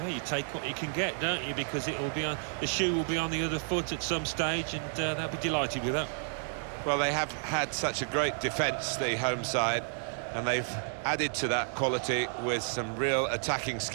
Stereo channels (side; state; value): left; silent; 57 dB below the other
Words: you take what you can get, don't you? Because it will be on, the shoe will be on the other foot at some stage, and they'll be delighted with that. Well, they have had such a great defence, the home side, and they've added to that quality with some real attacking